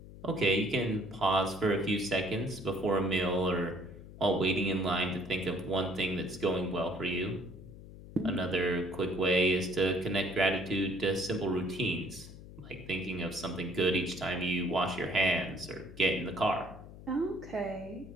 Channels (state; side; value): noise; left; hum, 16 dB below the sound